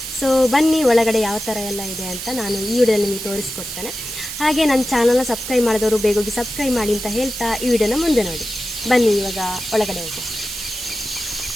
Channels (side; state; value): right; noise; hiss, 7 dB below the sound